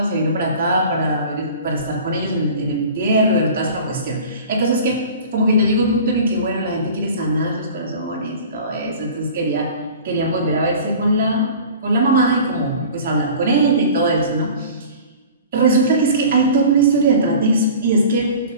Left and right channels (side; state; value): both; inverted; correlation -0.41